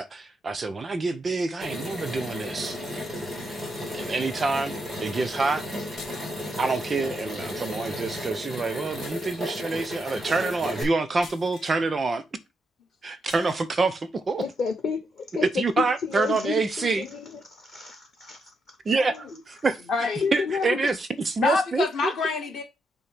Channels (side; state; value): both; normal; correlation 0.81